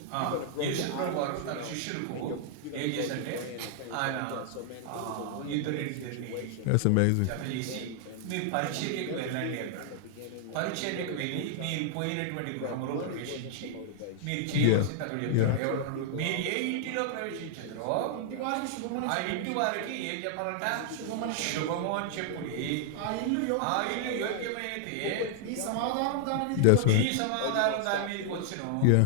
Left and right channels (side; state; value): both; different; correlation -0.01